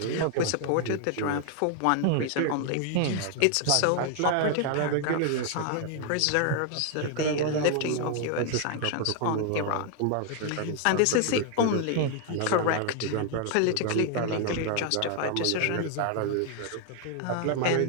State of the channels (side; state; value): both; different; correlation 0.00